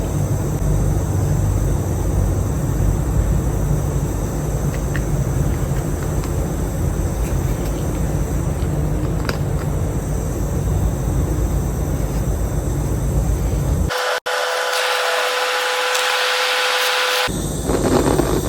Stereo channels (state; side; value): identical; both; correlation 1.00